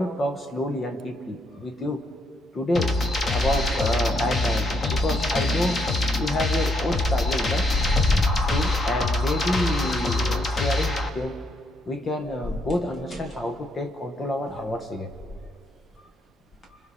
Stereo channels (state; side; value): normal; both; correlation 0.75